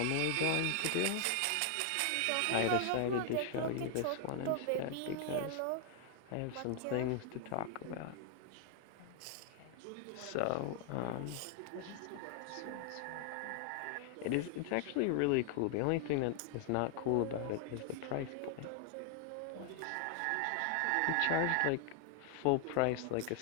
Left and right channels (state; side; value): different; both; correlation 0.00